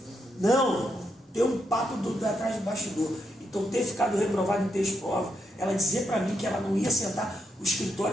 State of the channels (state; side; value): normal; both; correlation 0.81